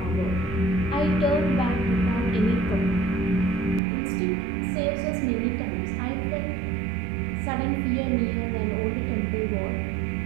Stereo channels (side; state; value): left; drops out; at 3.8 s